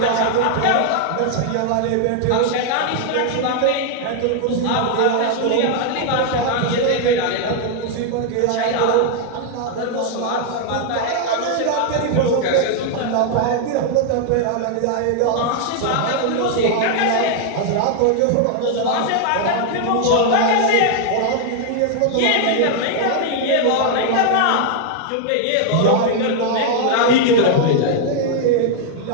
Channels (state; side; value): different; both; correlation 0.00